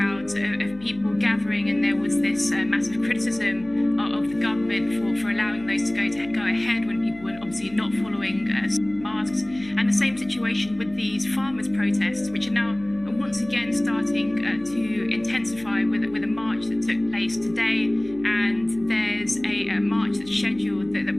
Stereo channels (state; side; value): noise; left; hum, 21 dB below the sound